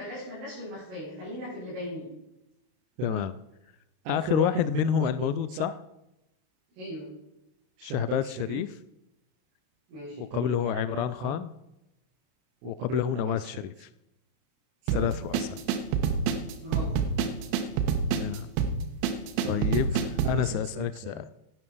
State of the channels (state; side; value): late; left; 33 ms